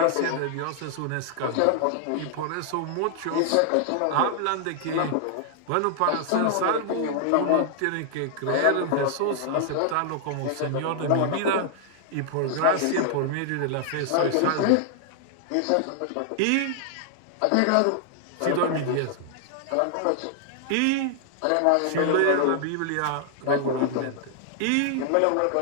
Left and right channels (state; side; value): different; both; correlation 0.00